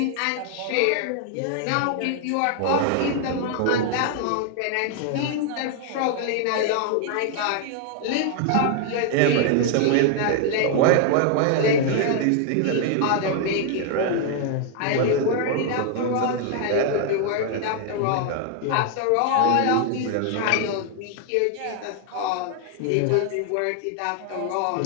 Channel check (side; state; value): both; different; correlation 0.00